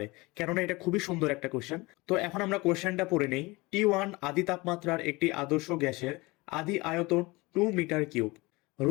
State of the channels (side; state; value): right; quieter; 23.3 dB